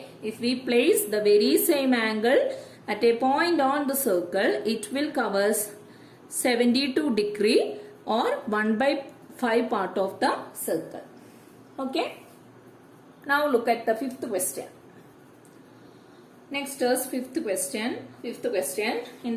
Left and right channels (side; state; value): both; identical; correlation 1.00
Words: if we place the very same angle at a point on the circle, it will cover 72 degree or 1 by 5 part of the circle. Okay, now look at the fifth question. Next is fifth question. Fifth question, in